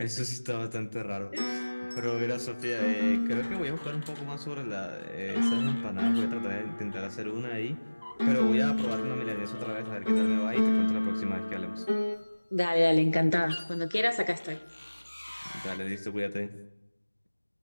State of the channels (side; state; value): both; inverted; correlation -1.00